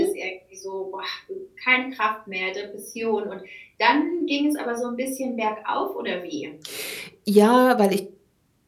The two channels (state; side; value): identical; both; correlation 1.00